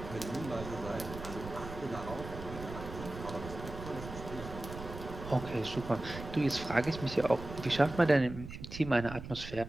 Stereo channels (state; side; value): noise; right; rumble, 10 dB below the sound